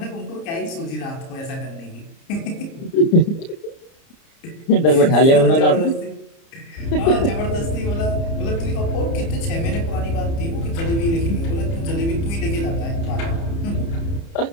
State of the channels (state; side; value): late; right; 30 ms